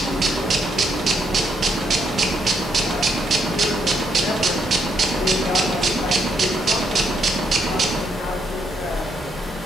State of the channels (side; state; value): both; normal; correlation 0.75